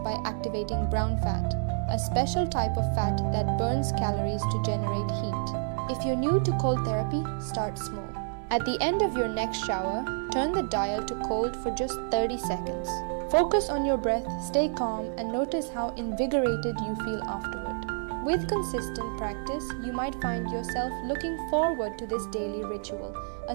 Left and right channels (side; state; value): left; silent; 59 dB below the other